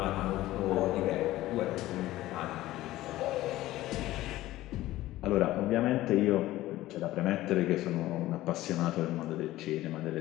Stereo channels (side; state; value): right; quieter; 16.1 dB